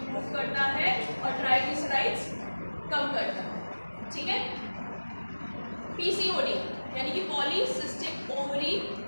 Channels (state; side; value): inverted; both; correlation -1.00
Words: करता है और ट्राइग्लिसराइड्स कम करता है, ठीक है। PCOD यानी कि पॉलीसिस्टिक ओवरी